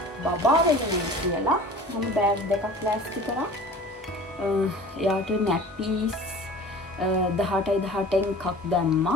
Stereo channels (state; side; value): normal; both; correlation 0.42